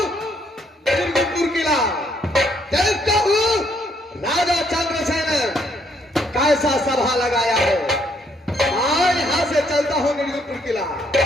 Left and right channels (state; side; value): normal; both; correlation 0.69